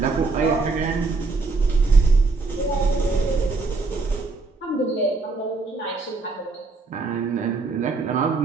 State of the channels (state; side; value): quieter; left; 3.9 dB